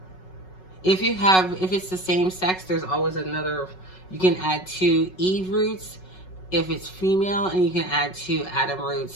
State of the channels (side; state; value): right; late; 5.4 ms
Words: If it's the same sex, there's always another, you can add 2 Eve roots if it's female, and you can add 2 Adam